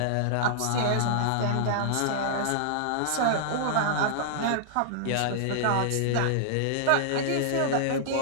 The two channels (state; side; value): different; both; correlation -0.01